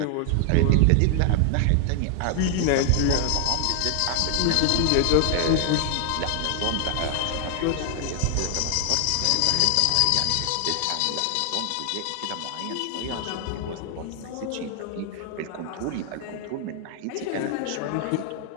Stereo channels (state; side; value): different; both; correlation 0.00